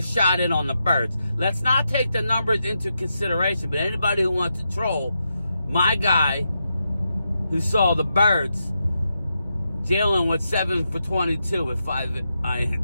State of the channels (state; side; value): inverted; both; correlation -0.85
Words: shot in on the birds. Let's not take the numbers into consideration, but anybody who wants to troll my guy who saw the birds, Jalen with 7 for 22 with 5